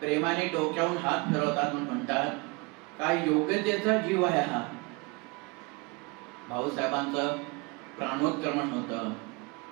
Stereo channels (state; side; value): quieter; left; 27.6 dB